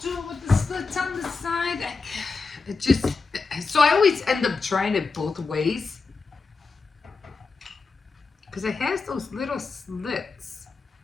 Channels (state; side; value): quieter; right; 4.4 dB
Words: do it with the slits on the side? So I always end up trying it both ways. Because it has those little slits.